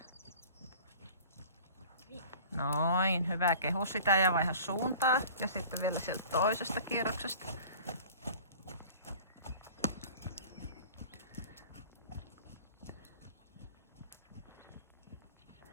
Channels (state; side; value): inverted; both; correlation -0.44